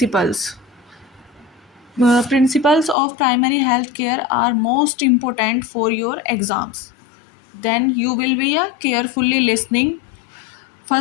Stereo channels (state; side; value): drops out; right; at 3.0 s